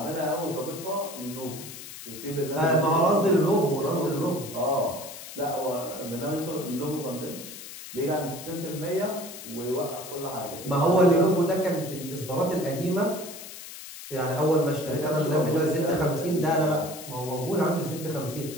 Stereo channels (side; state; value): left; noise; hiss, 12 dB below the sound